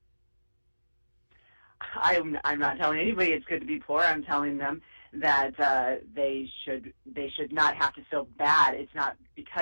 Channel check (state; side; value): inverted; both; correlation -1.00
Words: I'm not telling anybody it's good to be poor. I'm telling them they should not have to feel bad. It's not